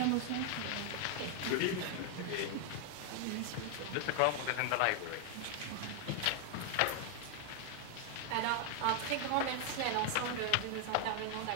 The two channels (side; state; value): both; different; correlation 0.00